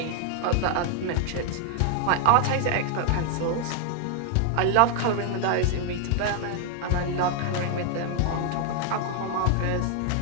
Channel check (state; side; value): different; both; correlation 0.01